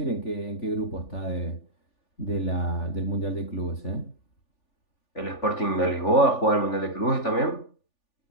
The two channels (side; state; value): right; late; 3.4 ms